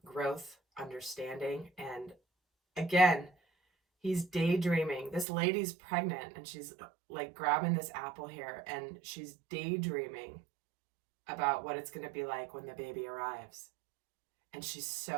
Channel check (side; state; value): left; drops out; at 5.2 s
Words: growth, understanding. And again, he's daydreaming. This lady's pregnant and she's like grabbing this apple here and she's daydreaming about what it's going to be like when the baby arrives. And she's